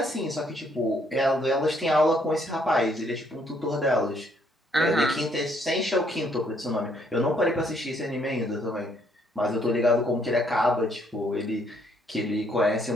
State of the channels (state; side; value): normal; both; correlation 0.69